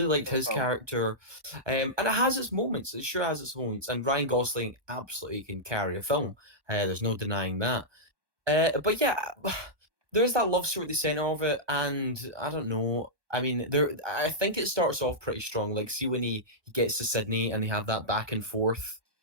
liked for the his film. character, and it has its moments. It sure has its moments. And Ryan Gosling absolutely can carry a film. There's no denying that. But yeah, there's that love story at the center of it, and I don't know. I mean, I think it starts off pretty strong. Like, see when he gets to Sydney and they have that back and forth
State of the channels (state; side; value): late; left; 1.2 ms